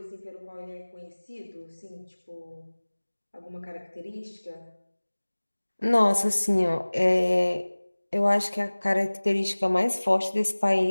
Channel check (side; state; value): both; inverted; correlation -1.00